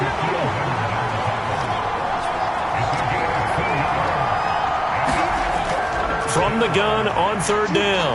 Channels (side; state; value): both; identical; correlation 1.00